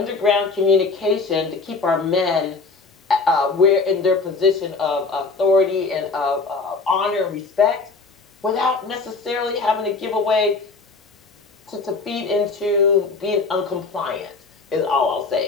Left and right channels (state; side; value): quieter; right; 4.1 dB